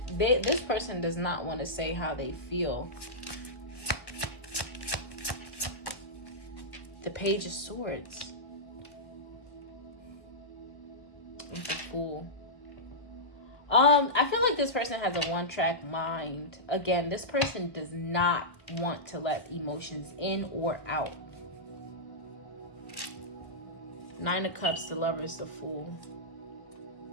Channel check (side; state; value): right; late; 1.1 ms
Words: person does not want to say how they feel. The Page of Swords. It's a Fool. I feel like this person has a one-track mind. Again, this person does not want to let emotions in or out. 9 of Cups, the Lovers, the Fool.